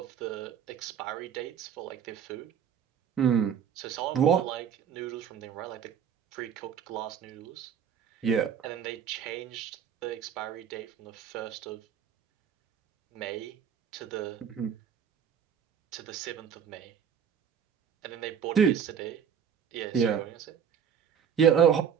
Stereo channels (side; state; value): left; quieter; 7.9 dB